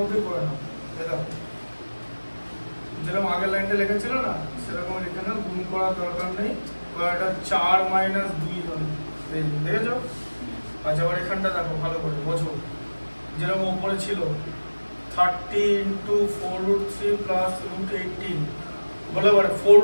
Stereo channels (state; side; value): inverted; both; correlation -1.00